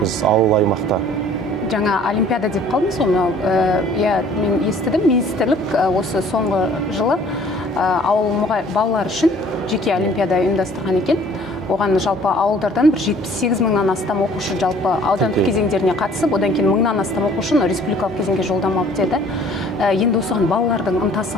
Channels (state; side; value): normal; both; correlation 0.54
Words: ауыл аймақта. Жаңа олимпиада деп қалдыңыз ғой, мен естідім, министрлік осы соңғы жылы ауыл балалар үшін жеке олимпиада ұйымдастырған екен. Оған жалпы ауылдардан бір 78 мыңнан астам оқушы жалпы аудандық кезеңдеріне қатысып, одан кейін мыңнан астам оқушы республикалық кезеңге жолдама алып деді. Енді осыған балалардың ынтасы